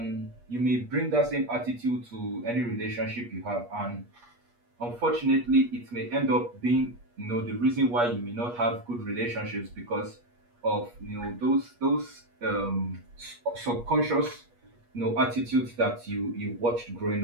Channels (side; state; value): left; late; 8.4 ms